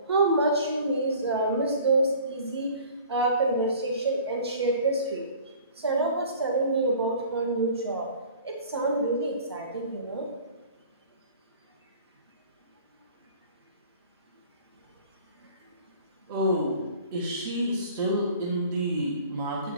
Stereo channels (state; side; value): inverted; both; correlation -0.47